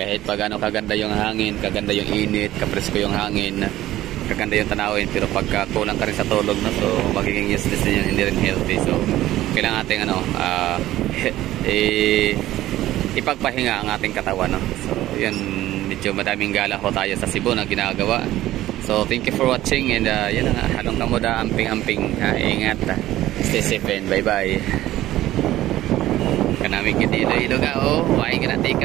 pag ano kaganda yung hangin, kaganda yung init, kapresko yung hangin, kaganda yung tanawin, pero pagka kulang ka rin sa tulog, no, so magiging useless din yun, hindi rin healthy. So, kailangan ating ipagpahinga ang ating katawan, no? So, yun, medyo madaming gala ho tayo sa Cebu na ginagawa. So, thank you for watching, and yun na nga, halong kamuda, amping-amping, ingat, stay safe, and bye-bye. Kanami kiti ilo-ilo ka, oh, why ka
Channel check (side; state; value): left; quieter; 14.8 dB